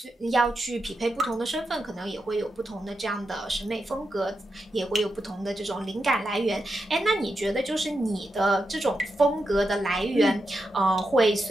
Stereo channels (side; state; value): both; normal; correlation 0.87